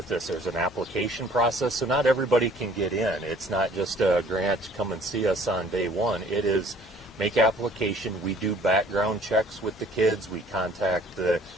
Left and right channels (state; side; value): normal; both; correlation 0.55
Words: this. There's an application process, so not everybody can get in. It's not just a grant, come and see us on day one. It is make application. We do background checks with the kids. We contact the